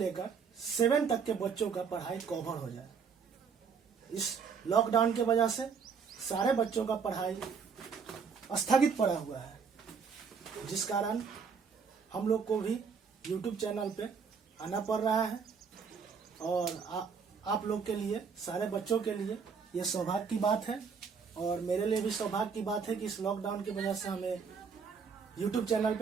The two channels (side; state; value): left; quieter; 6.0 dB